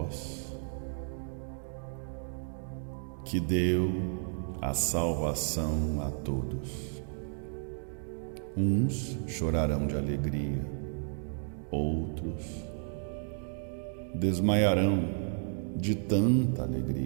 que deu a salvação a todos. Uns chorarão de alegria, outros desmaiarão de tanta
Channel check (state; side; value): silent; left; 56 dB below the other